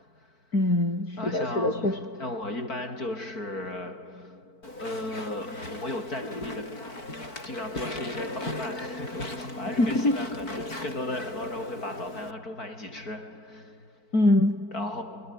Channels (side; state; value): right; late; 4.5 ms